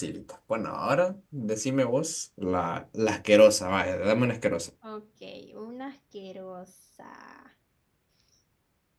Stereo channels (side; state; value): both; identical; correlation 1.00